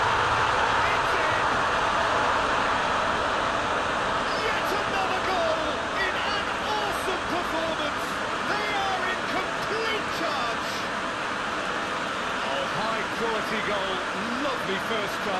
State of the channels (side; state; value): both; identical; correlation 1.00